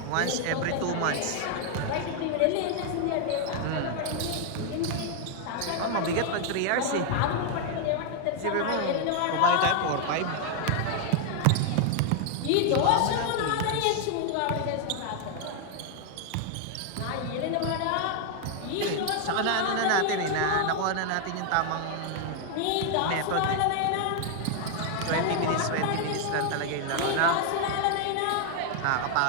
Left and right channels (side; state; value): both; different; correlation 0.00